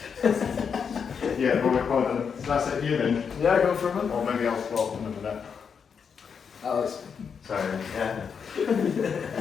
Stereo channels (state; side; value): quieter; right; 6.5 dB